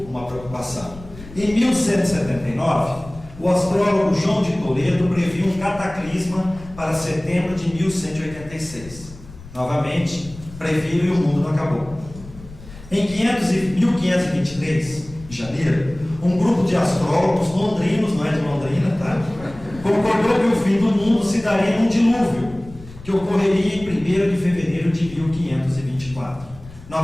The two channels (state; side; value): noise; left; rumble, 17 dB below the sound